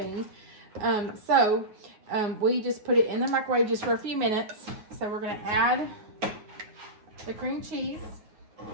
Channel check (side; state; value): left; late; 9.6 ms